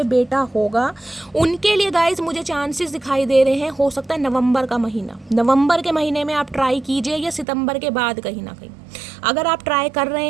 बेटा होगा। उनके लिए गाइस मुझे चांसेस दिखाई दे रहे हैं। हो सकता है नवंबर का महीना, नवंबर के महीने में आप ट्राई कीजिए, या सितंबर के बाद कहीं ना कहीं अगर आप ट्राई कर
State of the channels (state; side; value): drops out; left; at 7.5 s